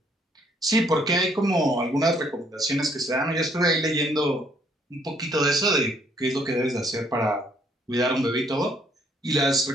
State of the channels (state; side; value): normal; both; correlation 0.66